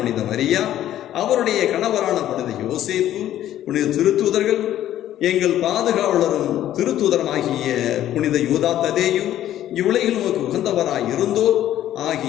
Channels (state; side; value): quieter; right; 12.3 dB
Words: மரியா, அவருடைய கணவரான புனித யோசேப்பு, புனித திருத்தூதர்கள், எங்கள் பாதுகாவலரும் திருத்தூதரமாகிய புனித யூதா ததேயும், இவ்வுலகில் உமக்கு உகந்தவராய் இருந்தோர்